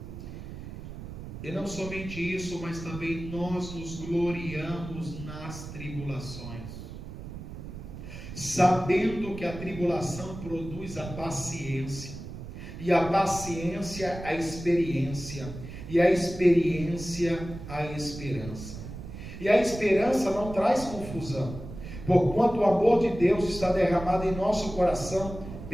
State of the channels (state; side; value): noise; right; rumble, 11 dB below the sound